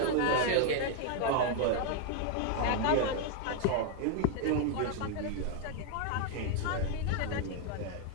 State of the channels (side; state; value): both; different; correlation 0.00